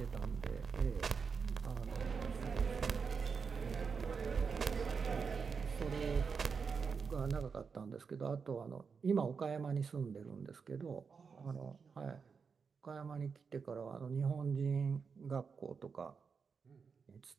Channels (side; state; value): left; quieter; 5.6 dB